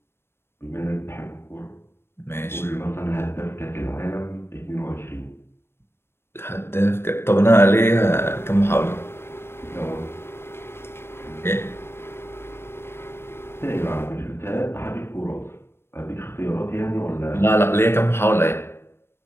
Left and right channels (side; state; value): right; late; 0.12 ms